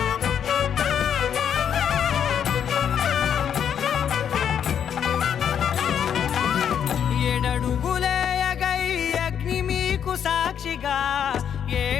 ఏడడుగులేయగై అగ్ని మీకు సాక్షిగా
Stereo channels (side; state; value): right; quieter; 8.5 dB